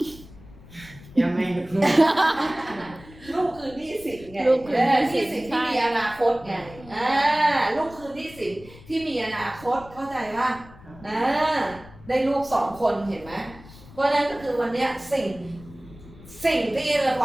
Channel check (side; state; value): left; noise; rumble, 20 dB below the sound